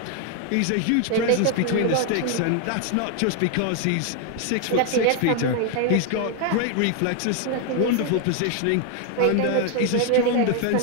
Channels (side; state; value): both; different; correlation 0.00